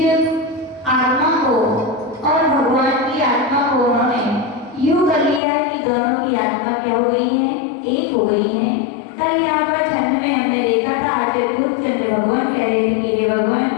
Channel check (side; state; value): right; drops out; at 5.4 s